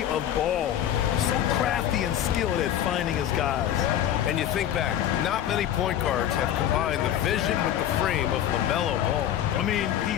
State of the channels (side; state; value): right; quieter; 11.0 dB